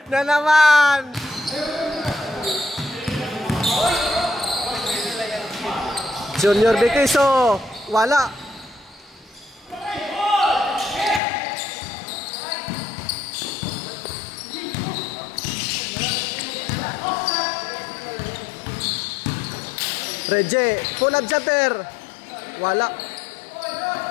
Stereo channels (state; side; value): drops out; right; at 11.2 s